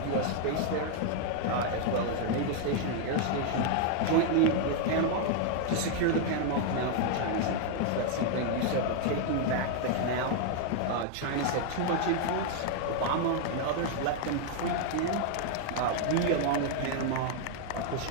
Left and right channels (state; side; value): different; both; correlation 0.00